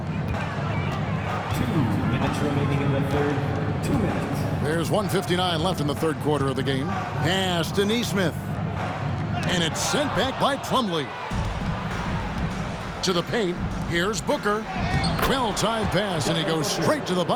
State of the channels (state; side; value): identical; both; correlation 1.00